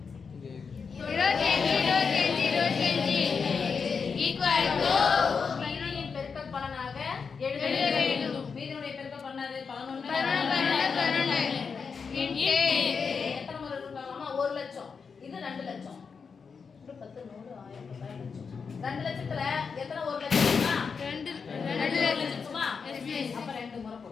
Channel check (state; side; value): quieter; right; 5.6 dB